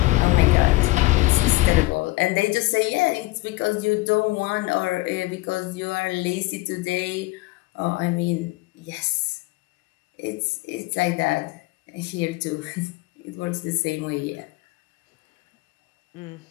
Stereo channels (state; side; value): quieter; right; 20.9 dB